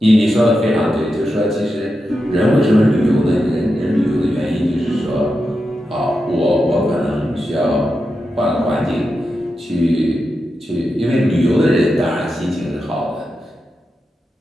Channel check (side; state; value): both; normal; correlation 0.88